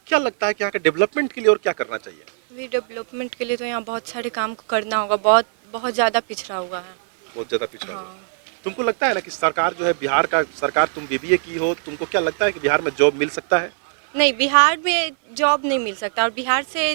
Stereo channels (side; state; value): left; silent; digital silence